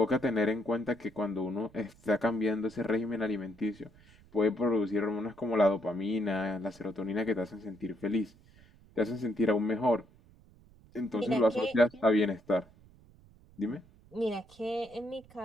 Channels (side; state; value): right; noise; rumble, 26 dB below the sound